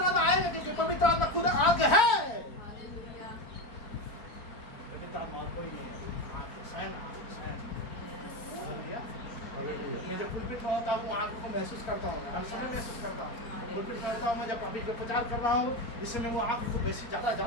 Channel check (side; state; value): right; late; 4.5 ms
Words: आत्मा आएगा, क्योंकि पवित्र आत्मा खुद आग है। पवित्र आत्मा और कोई नहीं है, आग स्वयं स्वयं। हालेलुया। मैं जब पुलपिट में होता हूँ आग को महसूस करता हूँ, हर समय महसूस करता हूँ। पुलपिट करता हूँ मैं, जब अभी जो प्रचार कर रहा हूँ इससे मैं वो आग को बेसी